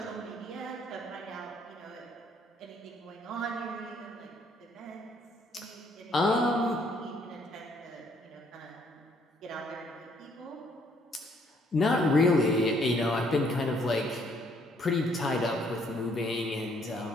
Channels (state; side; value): normal; both; correlation 0.66